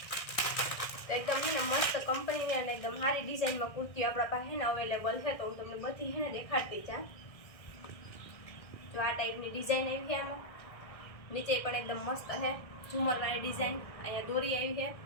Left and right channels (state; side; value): late; right; 1.6 ms